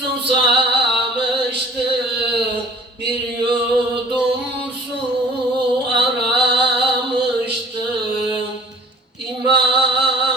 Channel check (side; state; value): both; normal; correlation 0.50